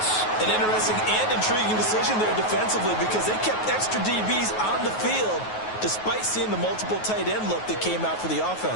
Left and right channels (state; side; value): late; right; 9.4 ms